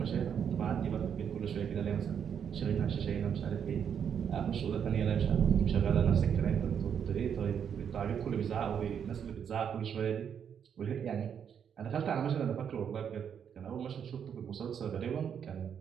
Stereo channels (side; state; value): left; quieter; 7.9 dB